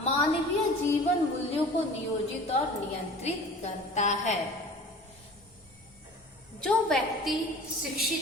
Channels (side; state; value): both; normal; correlation 0.43